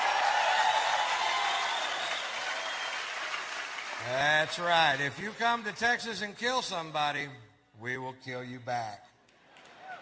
That's right. If you come to Texas and kill somebody, we will kill you back.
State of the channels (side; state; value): both; identical; correlation 1.00